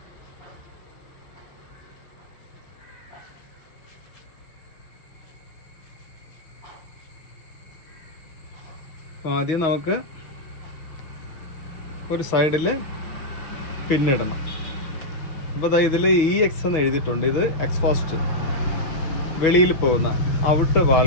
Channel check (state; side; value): late; right; 6.2 ms